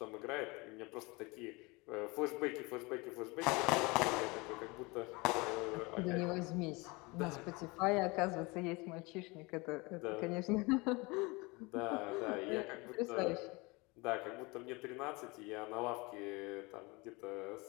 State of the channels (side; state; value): right; quieter; 25.6 dB